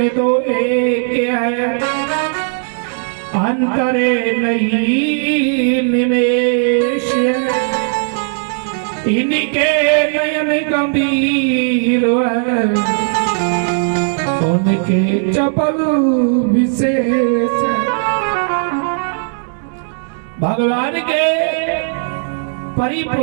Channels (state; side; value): silent; left; digital silence